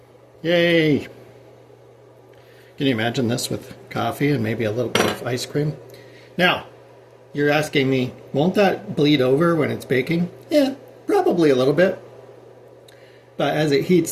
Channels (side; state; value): both; identical; correlation 1.00